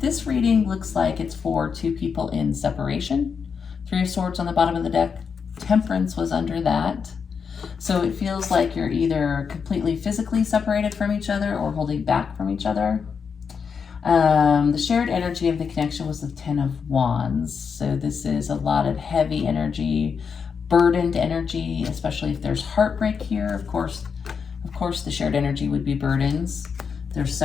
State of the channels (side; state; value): right; quieter; 6.1 dB